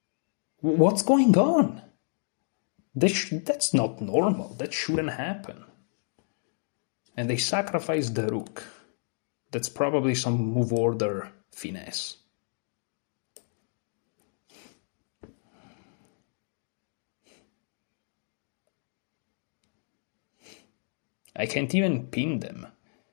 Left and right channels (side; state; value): right; silent; digital silence